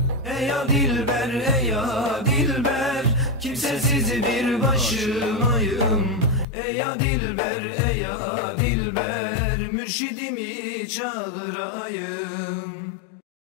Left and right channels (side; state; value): right; drops out; at 6.5 s